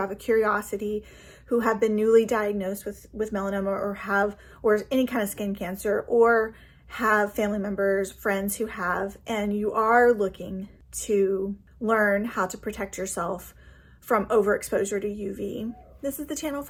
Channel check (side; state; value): both; identical; correlation 1.00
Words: a curiosity, who have been newly diagnosed with melanoma or any kind of skin cancer, or have family members, friends who have, and you are looking to learn how to protect yourself from overexposure to UV, this is the channel